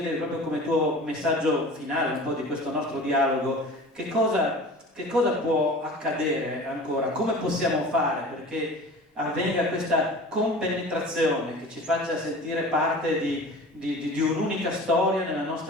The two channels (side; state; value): both; normal; correlation 0.39